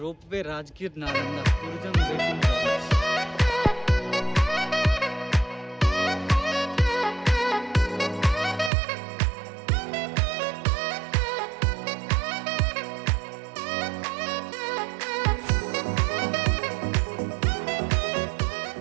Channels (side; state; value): left; drops out; at 8.7 s